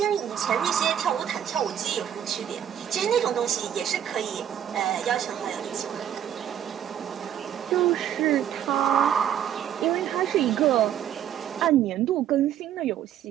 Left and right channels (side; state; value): left; quieter; 10.1 dB